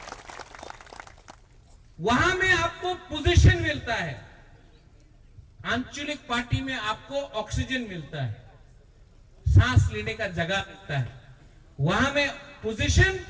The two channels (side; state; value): both; identical; correlation 1.00